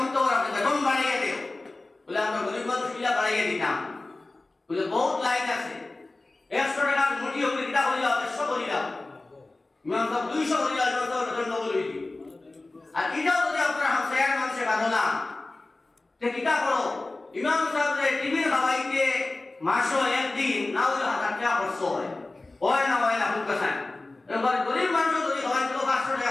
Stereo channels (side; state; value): right; quieter; 3.1 dB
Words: আপনি বেতন বাড়িয়ে দিও বলে আমরা গরিব মানুষ কিলা বাড়িয়ে দিতাম বলে বহুত লাইন আছে। 100 টাকা মুঠি হলে কিটা করিলাম 100 করিলাম, ইমাম সাহেব 200 করিলাম, ইমাম সাহেব বেতন ডবল হইল। আর এটাও যদি আপনারা হামসায়ার মানুষে বাঁধো না তে কিটা করো, ইমাম সাহেব টিভির খাওয়াইতে মাসও একদিন না হলে 1000 টাকা খরচ হয় না হয় না খুব কাছে। এবার গরিব মানুষ যদি খাওয়াইতে 500